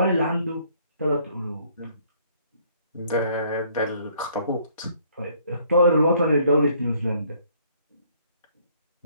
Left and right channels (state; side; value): inverted; both; correlation -0.62